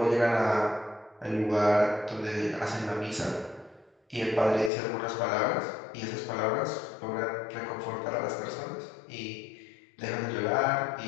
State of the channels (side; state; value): right; drops out; at 4.7 s